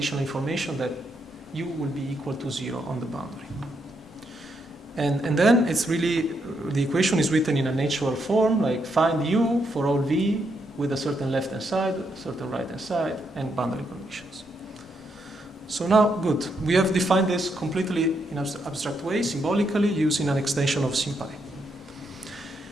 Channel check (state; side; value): normal; both; correlation 0.79